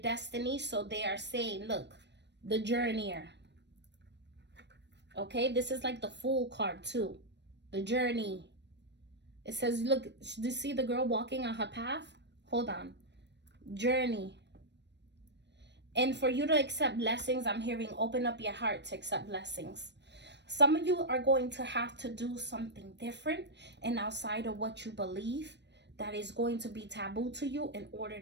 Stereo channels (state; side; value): late; left; 0.50 ms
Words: So they are saying, look, the journeyer. Okay, this is like the Fool card too. The journey. It says, look, do you see the girl walking on her path? Hold on. Journey. And for you to accept blessings, I'm hearing open up your heart to accept blessings. Some of you are going to have to do something different and outside of what you believe that is going to be taboo to you in order